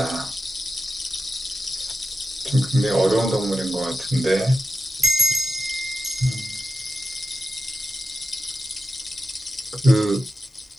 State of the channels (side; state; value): both; normal; correlation 0.92